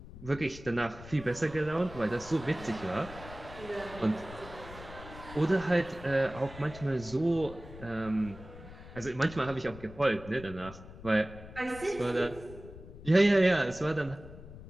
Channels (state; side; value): noise; left; rumble, 15 dB below the sound